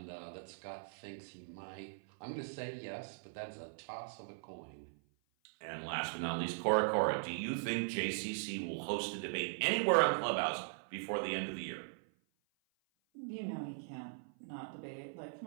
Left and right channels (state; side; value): silent; left; 51 dB below the other